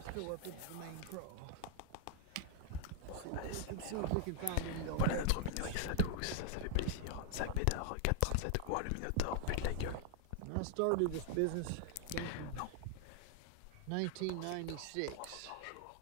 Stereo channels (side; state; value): both; different; correlation -0.01